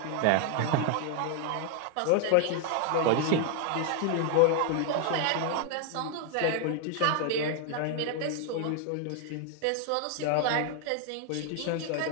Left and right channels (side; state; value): both; different; correlation 0.00